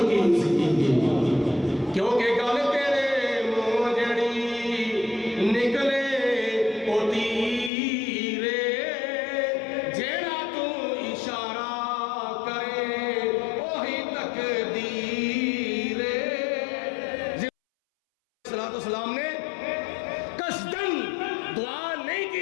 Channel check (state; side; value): drops out; right; at 7.7 s